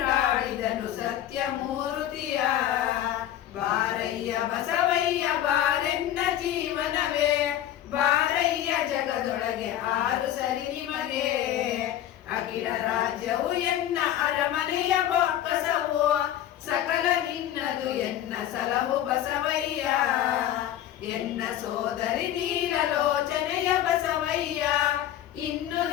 ಸತ್ಯಮೂರ್ತಿಯ. ಬಾರಯ್ಯ ಬಸವಯ್ಯ ಬಾರೆನ್ನ ಜೀವನವೇ ಬಾರಯ್ಯ ಜಗದೊಳಗೆ 6 ಸರಿ ನಿಮಗೆ. ಅಖಿಲ ರಾಜ್ಯವು ಎನ್ನ ಅರಮನೆಯ ಬೊಕ್ಕಸವು ಸಕಲ ನಿನ್ನದು ಎನ್ನ ಸಲಹು ಬಸವಯ್ಯ. ಎನ್ನ ಸೋದರಿ ನೀಲಲೋಚನೆಯ ಬಸವಯ್ಯ ಇನ್ನು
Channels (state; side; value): quieter; right; 11.9 dB